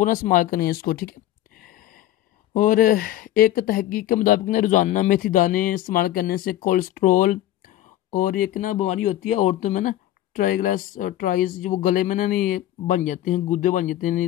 ना इस्तेमाल करें इसको, ठीक है। और एक तहकीक के मुताबिक ना रोज़ाना मेथी दाने इस्तेमाल करने से कोलेस्ट्रोल और एक ना बीमारी होती है औरतों में ना, ट्राइज, जो वो गले में ना नहीं बन जाते हैं, गुर्दे बन जाते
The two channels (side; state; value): right; quieter; 13.5 dB